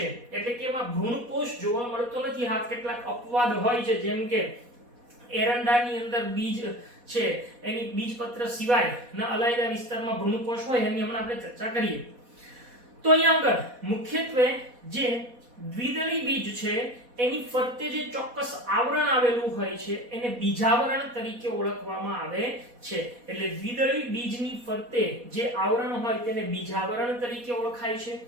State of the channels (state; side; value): late; left; 4.1 ms